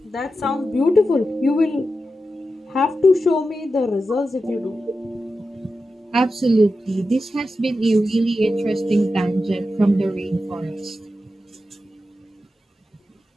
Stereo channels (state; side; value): normal; both; correlation 0.90